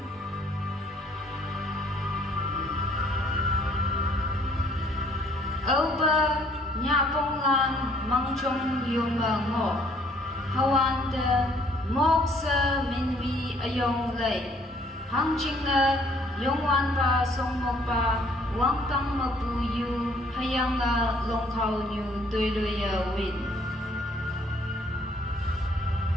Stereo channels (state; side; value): normal; both; correlation 0.62